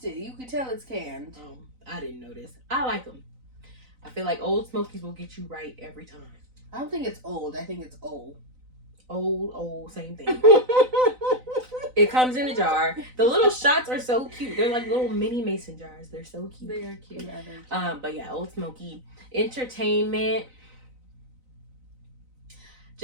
it. You could tell it's canned. I didn't know this. I like them. I feel like Old Smokies will get you right every time. I don't think it's old. I think it's old. Old, same thing. It comes in a jar. The little shots are so cute. They're like little mini mason jars. They're so cute. They are cute. But yeah, Old Smoky. Entertainment.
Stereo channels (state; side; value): late; left; 4.0 ms